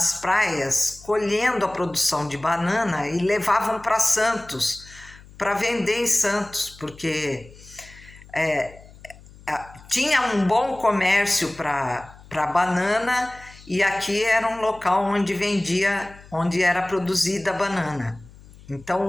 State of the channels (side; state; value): left; noise; hum, 22 dB below the sound